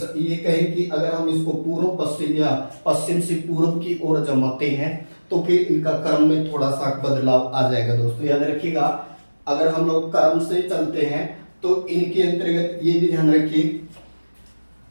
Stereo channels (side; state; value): both; inverted; correlation -1.00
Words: कहें कि अगर हम इसको पूर्व पश्चिम या पश्चिम से पूर्व की ओर जमाते हैं तो फिर इनका क्रम में थोड़ा सा बदलाव आ जाएगा दोस्तों, याद रखिएगा। अगर हम लोग क्रम से चलते हैं तो इनके अंतर्गत ये भी ध्यान रखिए,